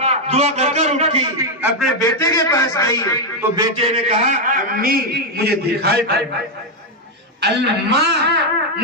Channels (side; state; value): both; normal; correlation 0.02